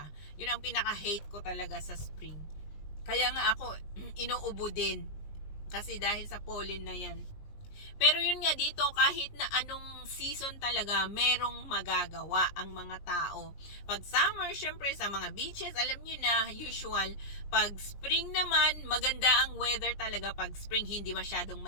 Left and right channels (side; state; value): right; late; 20 ms